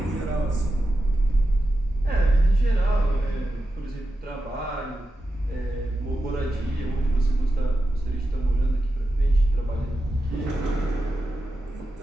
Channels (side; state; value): both; normal; correlation 0.90